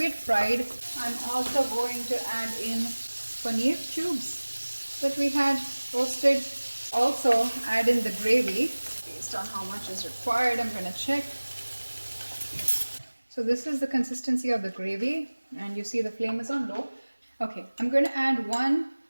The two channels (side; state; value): both; inverted; correlation -1.00